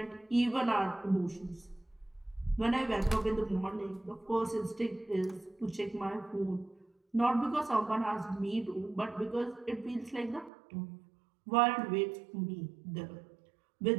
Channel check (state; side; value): drops out; left; at 10.5 s